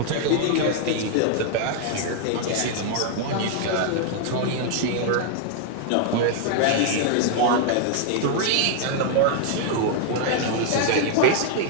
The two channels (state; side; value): different; both; correlation 0.00